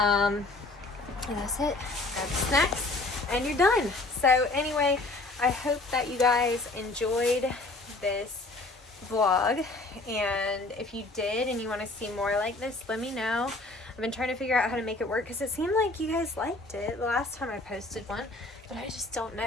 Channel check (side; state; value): right; quieter; 3.1 dB